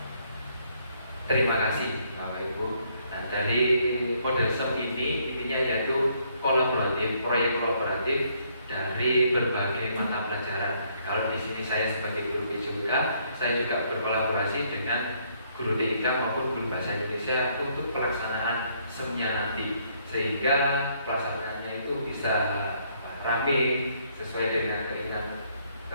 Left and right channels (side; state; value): both; inverted; correlation -0.69